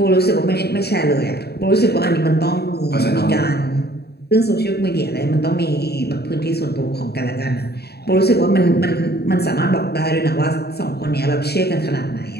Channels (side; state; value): right; late; 0.47 ms